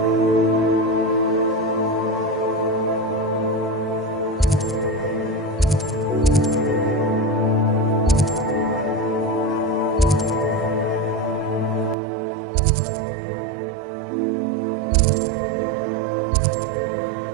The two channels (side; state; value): left; drops out; at 12.0 s